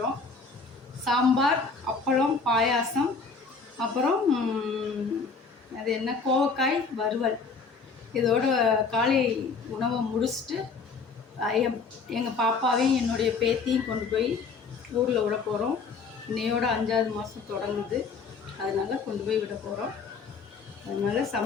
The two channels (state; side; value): quieter; right; 4.7 dB